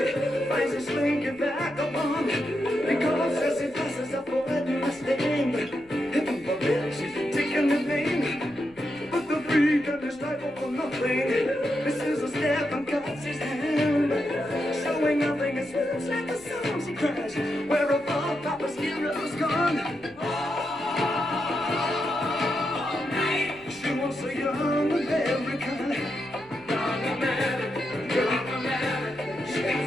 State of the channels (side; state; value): left; noise; rumble, 28 dB below the sound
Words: finds a slinky vagabond. Because as he passes up for everlasting, heaven forbid she's taking the name. But the freak and his life for nothing. This is a step and cuts his hand, showing nothing. It smells like the song she cries. Where a ball Papa's hero's gone. All night. She was a young American. Young American, young American. She